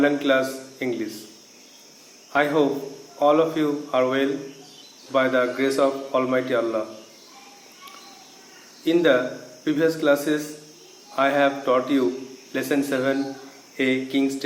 class English. I hope all of you are well by the grace of Almighty Allah. In the previous classes, I have taught you lesson 7, A King's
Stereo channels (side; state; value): both; identical; correlation 1.00